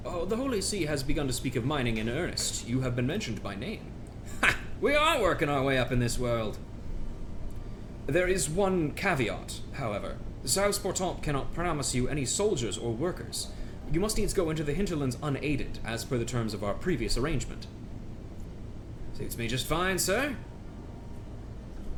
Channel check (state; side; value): identical; both; correlation 1.00